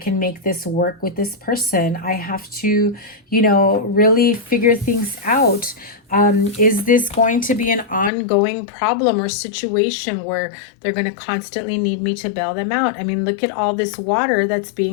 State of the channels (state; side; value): drops out; right; at 8.1 s